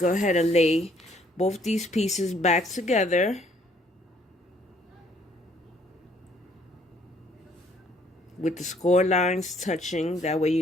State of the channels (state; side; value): normal; both; correlation 0.63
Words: ahead and lay both these pieces back together. With the score lines touching, that way